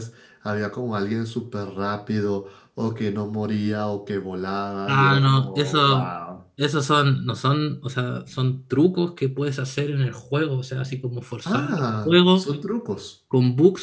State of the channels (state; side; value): identical; both; correlation 1.00